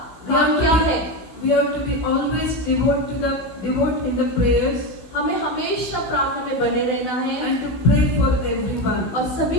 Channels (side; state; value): right; late; 16 ms